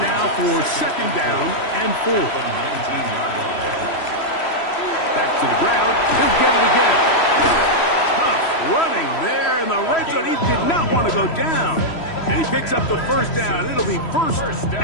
for second down and 4. Back to the ground. He'll get it again. Tough running there in the red zone. He did not want to go down. And he picks up the first down. It'll be 1st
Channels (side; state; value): right; late; 3.1 ms